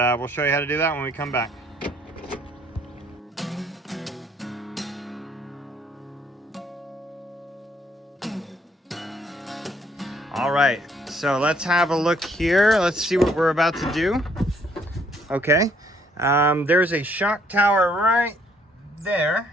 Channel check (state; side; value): normal; both; correlation 0.66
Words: we'll show you how to do that when we come back. All right, so let's have a look here. Let's see what we're about to do. Okay, there's a shock tower right